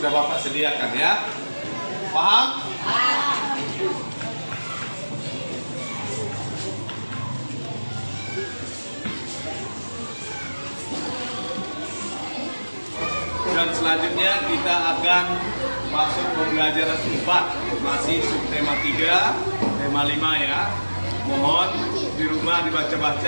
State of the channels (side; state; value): both; inverted; correlation -1.00